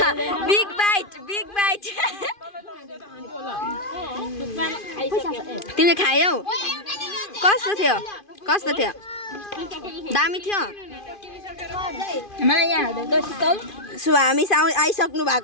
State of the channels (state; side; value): late; right; 2.5 ms